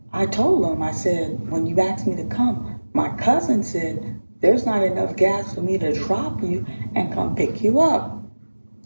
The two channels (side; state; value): both; inverted; correlation -1.00